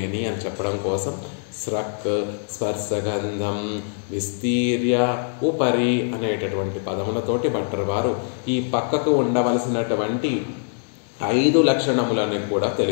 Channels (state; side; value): silent; right; digital silence